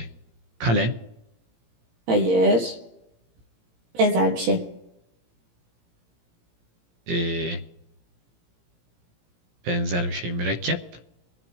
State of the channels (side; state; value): left; late; 17 ms